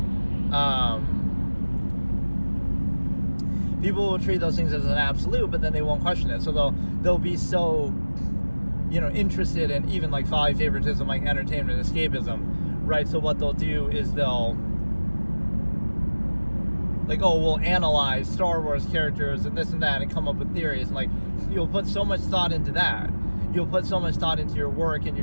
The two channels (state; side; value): inverted; both; correlation -1.00